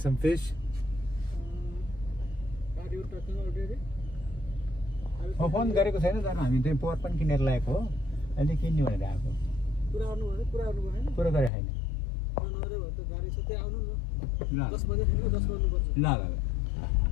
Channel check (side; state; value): right; drops out; at 11.5 s